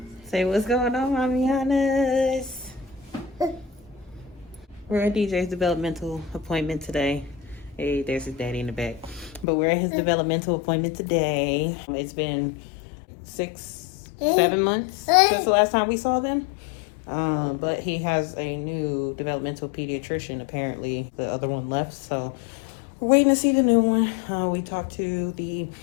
Say what's going on, Mamianas. We're at DJ's developmental appointment today. Hey, there's his daddy in the back. But we're at his developmental appointment today. It's been 6-7 months since the last time we saw them. But he has a new developmental pediatrician. Apparently the other one left, so we're waiting to see the new one. We talked to the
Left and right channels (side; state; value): right; drops out; at 9.5 s